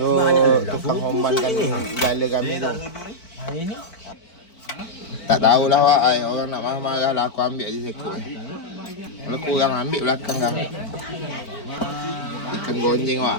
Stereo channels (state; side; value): late; right; 4.5 ms